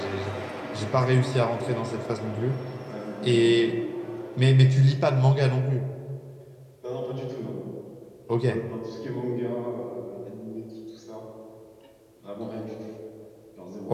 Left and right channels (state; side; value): identical; both; correlation 1.00